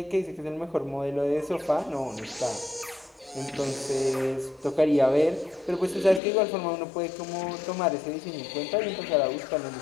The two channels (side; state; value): right; drops out; at 6.2 s